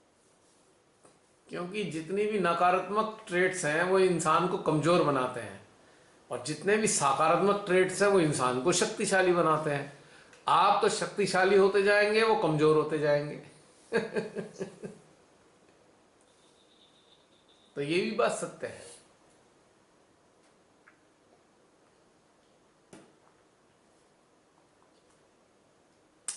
क्योंकि जितनी भी नकारात्मक ट्रेट्स हैं वो इंसान को कमजोर बनाते हैं, और जितने भी सकारात्मक ट्रेट्स हैं वो इंसान को शक्तिशाली बनाते हैं। आप तो शक्तिशाली होते जाएंगे, वो कमजोर होते जाएंगे। तो ये भी बात सत्य है।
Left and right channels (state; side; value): identical; both; correlation 1.00